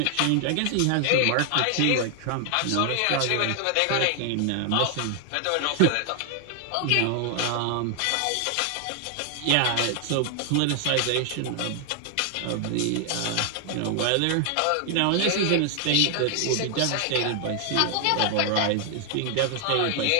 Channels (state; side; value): different; both; correlation 0.00